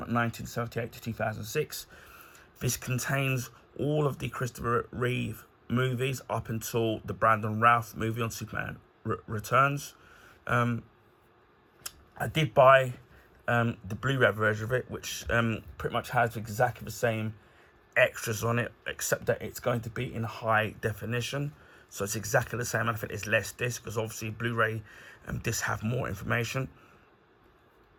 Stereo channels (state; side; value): identical; both; correlation 1.00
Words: to 2006. This contains all of the Christopher Reeve movies up until the Brandon Routh movie on Superman Returns. I did buy the Blu-ray version of it, which pretty much has exactly the same extras on it, except that it's going to be in high definition. So it's exactly the same, and I think it's less disc, because obviously Blu-ray discs have more information.